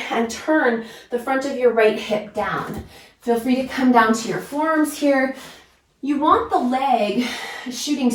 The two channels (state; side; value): identical; both; correlation 1.00